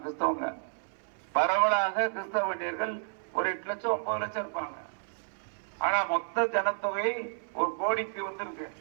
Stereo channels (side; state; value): left; silent; 57 dB below the other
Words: கிறிஸ்தவங்க. பரவலாக கிறிஸ்தவ வன்னியர்கள் ஒரு 8 லட்சம் 9 லட்சம் இருப்பாங்க. ஆனா மொத்த ஜனத்தொகை 1 கோடிக்கு வந்திருக்கு.